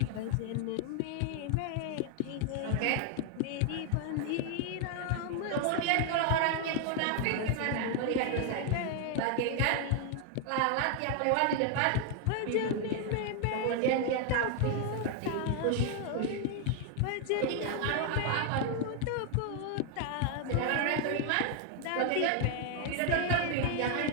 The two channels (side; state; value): both; different; correlation 0.00